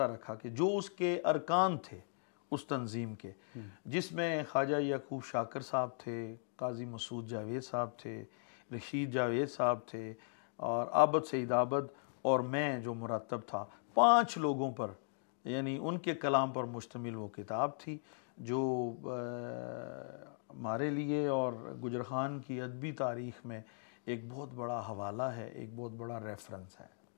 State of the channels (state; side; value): silent; right; digital silence